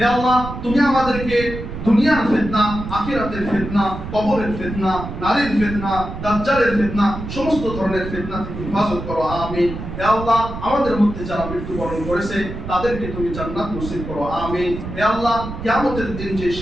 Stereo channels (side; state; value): right; noise; rumble, 8 dB below the sound